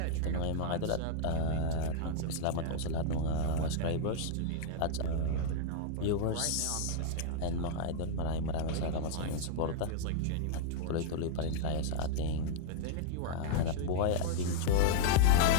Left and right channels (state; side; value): different; both; correlation -0.01